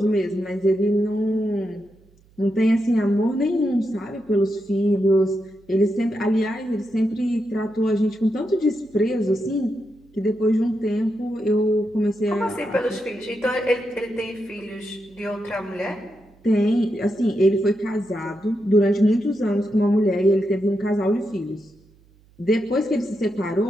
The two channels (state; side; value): noise; right; hum, 30 dB below the sound